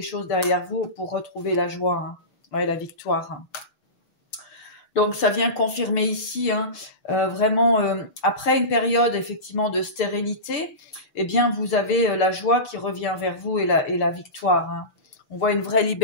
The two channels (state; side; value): late; right; 6.7 ms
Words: derrière vous pour retrouver la joie hein, ouais, la victoire. Hein. Donc ça vient confirmer ici, hein, vraiment, après une période effectivement de stérilité, eh bien vous avez la joie qui revient vers vous et la victoire. Hein. On voit une vraie